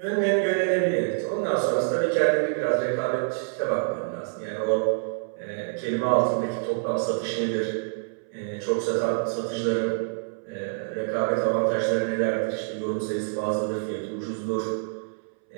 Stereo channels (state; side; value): silent; left; 61 dB below the other